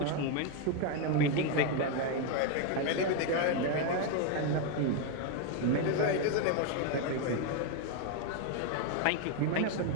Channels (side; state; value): both; different; correlation 0.01